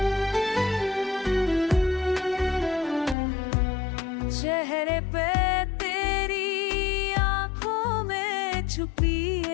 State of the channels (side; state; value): right; drops out; at 3.2 s